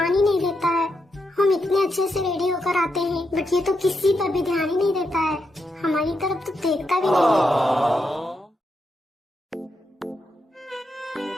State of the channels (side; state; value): both; normal; correlation 0.83